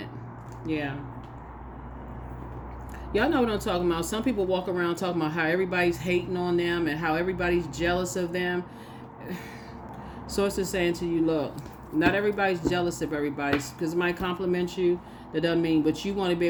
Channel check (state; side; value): identical; both; correlation 1.00